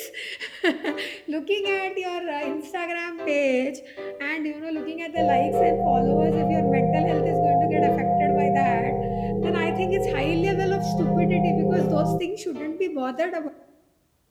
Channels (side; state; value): both; identical; correlation 1.00